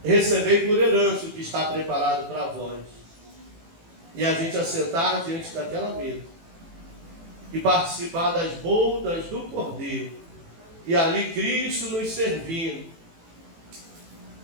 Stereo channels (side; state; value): left; late; 18 ms